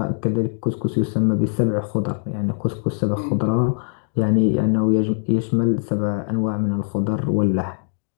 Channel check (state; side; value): silent; right; digital silence